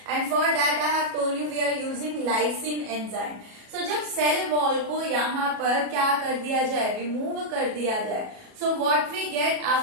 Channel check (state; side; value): late; left; 37 ms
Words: and for that I have told you we are using lysin enzyme. So जब सेल वॉल को यहाँ पर क्या कर दिया जाए, रिमूव कर दिया जाए, so what we get